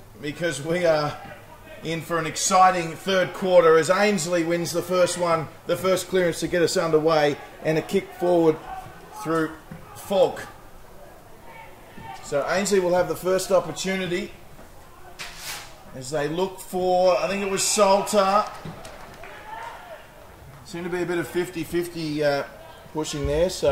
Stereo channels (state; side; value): identical; both; correlation 1.00